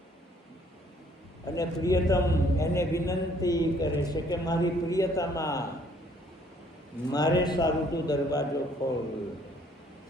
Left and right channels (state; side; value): normal; both; correlation 0.62